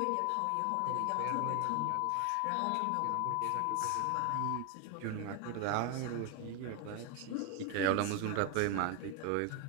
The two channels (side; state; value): both; different; correlation 0.01